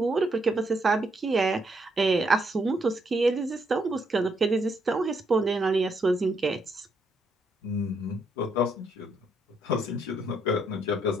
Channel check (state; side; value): normal; both; correlation 0.75